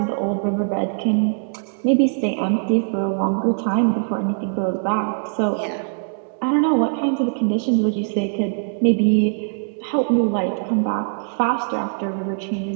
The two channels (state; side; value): silent; left; 65 dB below the other